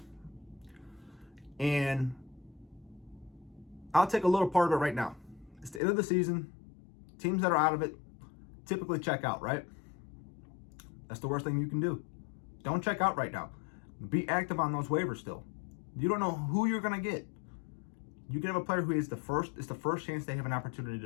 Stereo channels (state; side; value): drops out; right; at 5.8 s